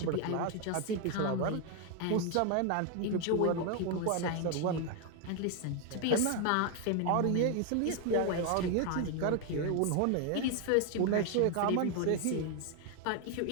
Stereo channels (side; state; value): both; different; correlation 0.01